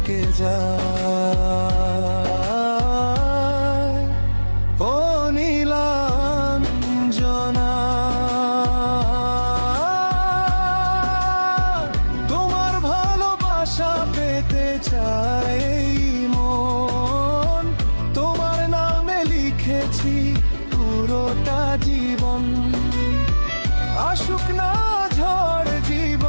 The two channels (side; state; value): both; inverted; correlation -1.00